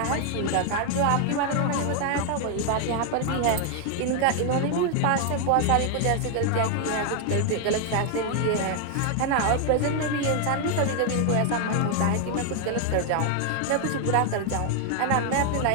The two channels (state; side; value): different; both; correlation 0.00